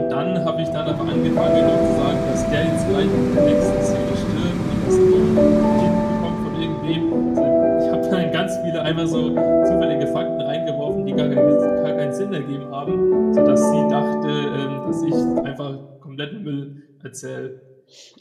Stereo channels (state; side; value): identical; both; correlation 1.00